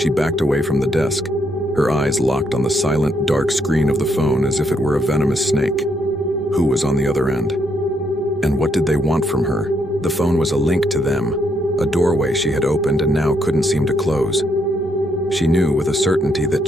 backed away from the desk, her eyes locked on the silent, dark screen of the phone as if it were a venomous snake. Who was on the other end? And what did they want from her? The phone was a link to them, a doorway she had opened and now couldn't seem to close. She knew with a certainty that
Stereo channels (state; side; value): normal; both; correlation 0.75